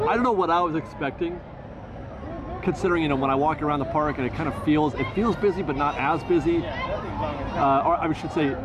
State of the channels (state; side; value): identical; both; correlation 1.00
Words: I don't know what I was expecting, considering, you know, when I walk around the park and it kind of feels busy, but not as busy. Or I should say,